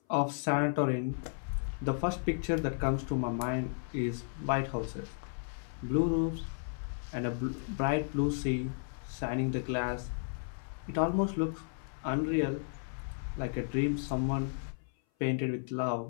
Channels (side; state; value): right; silent; 55 dB below the other